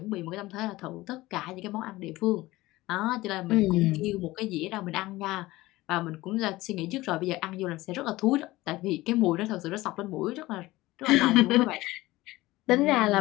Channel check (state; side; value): quieter; right; 18.7 dB